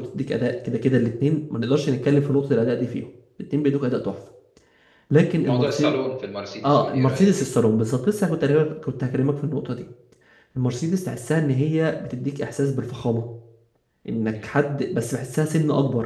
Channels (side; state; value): both; identical; correlation 1.00